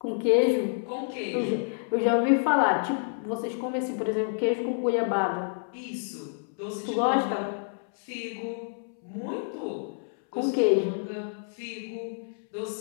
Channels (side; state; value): right; silent; 59 dB below the other